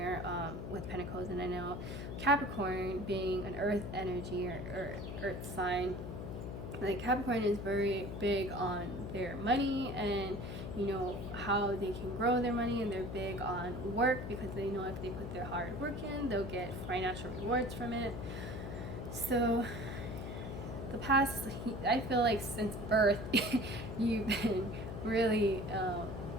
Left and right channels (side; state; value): left; noise; hum, 6 dB below the sound